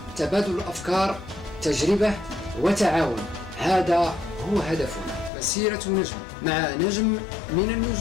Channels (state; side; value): drops out; right; at 5.3 s